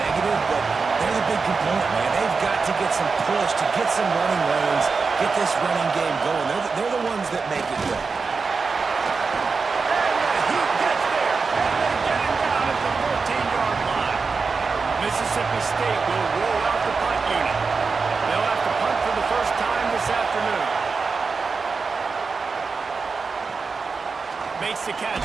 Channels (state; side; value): quieter; left; 4.7 dB